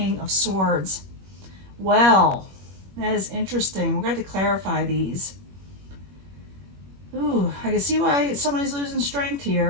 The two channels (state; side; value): late; left; 21 ms